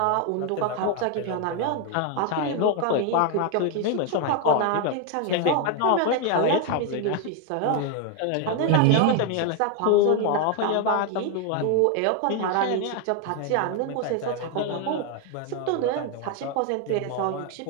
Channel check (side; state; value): both; different; correlation 0.01